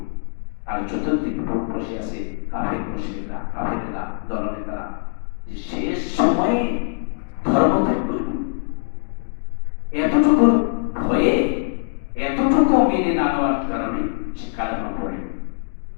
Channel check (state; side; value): silent; right; digital silence